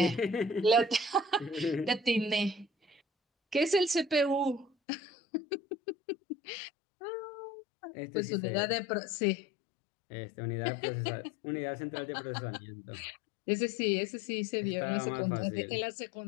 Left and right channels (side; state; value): right; drops out; at 4.7 s